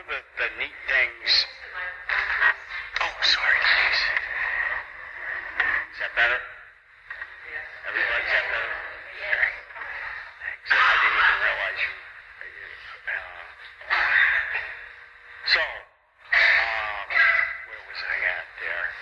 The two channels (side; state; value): both; identical; correlation 1.00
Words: the neat things... Oh, sorry, please. Is that better? Everybody, is that better? Okay. Thanks. I didn't even realize you... So, where was I at there?